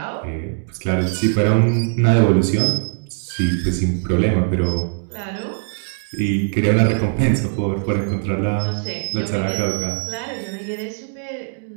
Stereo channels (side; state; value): left; silent; digital silence